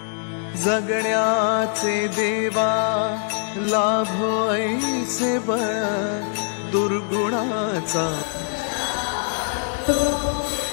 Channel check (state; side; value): silent; right; digital silence